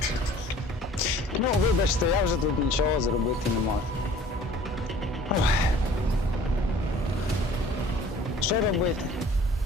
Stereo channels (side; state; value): both; normal; correlation 0.50